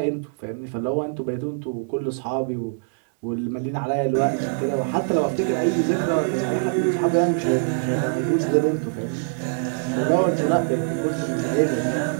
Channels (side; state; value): left; silent; digital silence